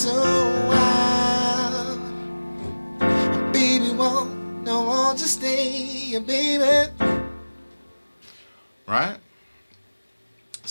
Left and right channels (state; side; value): inverted; both; correlation -1.00